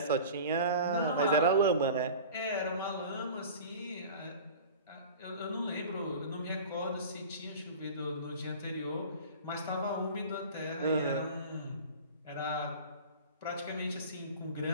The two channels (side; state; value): both; inverted; correlation -0.38